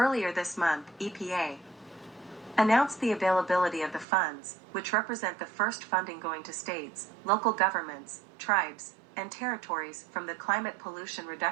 this month, EPA announced the availability of the funds, which represent the first funding going to states, local governments, tribes, and territories from the Climate Pollution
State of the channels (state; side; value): drops out; left; at 4.0 s